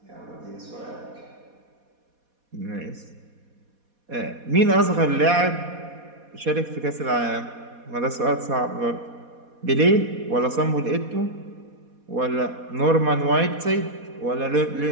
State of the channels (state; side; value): late; left; 4.2 ms